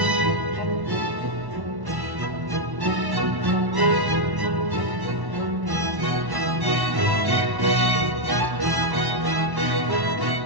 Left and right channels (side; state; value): left; late; 1.1 ms